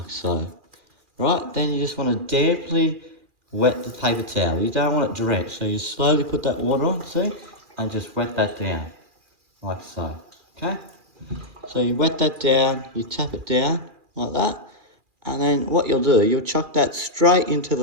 so. Right, then you just want to damply wet the paper towel. You don't want it drenched, so you slowly put that water on, see, and just wet that down like so, okay? So you wet that down, you tap it down like that. And then what you'll do, you'll chuck that straight into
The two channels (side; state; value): left; late; 2.4 ms